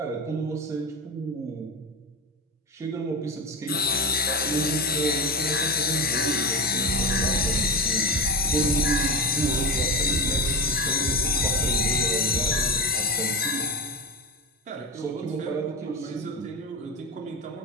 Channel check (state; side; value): normal; both; correlation 0.20